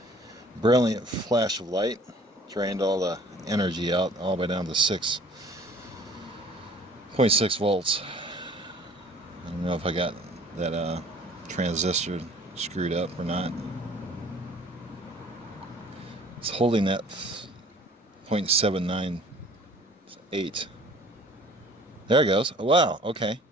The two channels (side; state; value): both; normal; correlation 0.51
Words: Brilliant flash of light, drained all the energy out all the way down to 6.6 volts. I don't know if I got that transistor screwed up or not. It's holding that 0.798. There it goes. Oh, wow, okay.